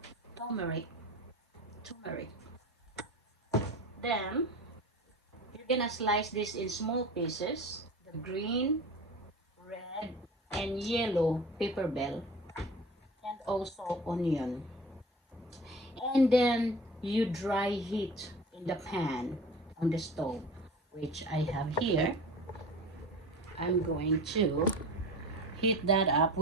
turmeric. turmeric. Then you're gonna slice this in small pieces. The green, red, and yellow pepper bell and also onion. And then you dry heat in the pan on the stove, which I have here. I'm going to heat that up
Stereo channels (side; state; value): both; normal; correlation 0.36